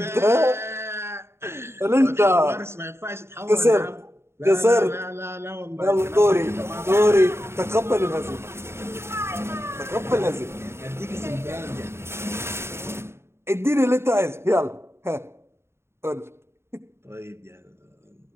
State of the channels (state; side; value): late; left; 0.12 ms